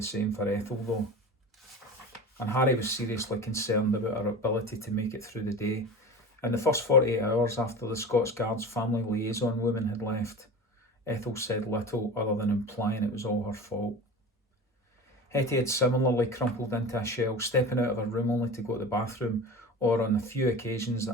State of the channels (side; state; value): both; normal; correlation 0.32